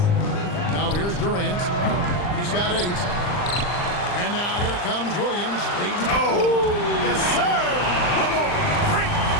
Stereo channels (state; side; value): late; right; 39 ms